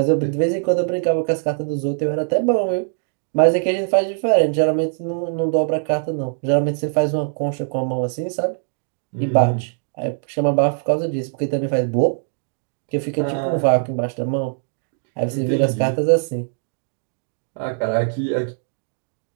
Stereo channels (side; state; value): left; silent; digital silence